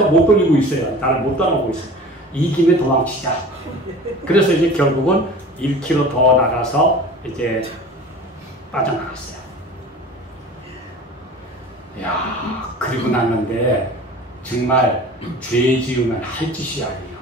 못 돌리고 있어요. 나를 못 따라오고 있어요. 이 김에 도망치자. 그래서 이제 결국은 1km 더 나가서 이제 빠져나갔어요. 야, 그리고 났는데 정말 죄 지으면 할 짓이 아니에요.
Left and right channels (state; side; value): normal; both; correlation 0.39